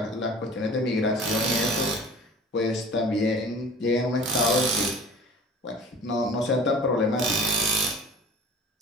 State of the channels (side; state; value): both; normal; correlation 0.44